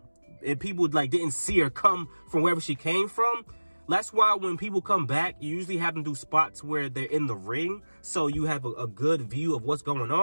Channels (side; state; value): both; inverted; correlation -1.00